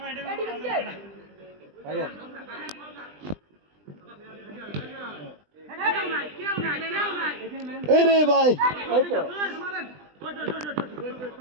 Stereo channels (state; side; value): late; left; 20 ms